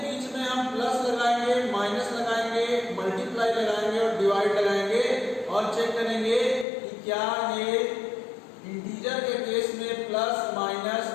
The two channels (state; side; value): drops out; right; at 6.7 s